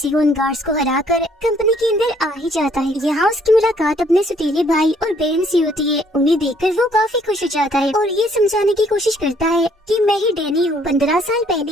वो उन गार्ड्स को हराकर कंपनी के अंदर आ ही जाता है। यहाँ उसकी मुलाकात अपने सतीले भाई और बहन से होती है। उन्हें देखकर वो काफी खुश हो जाता है और ये समझाने की कोशिश करता है कि मैं ही डैनी हूँ। 15 साल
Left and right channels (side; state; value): both; normal; correlation 0.64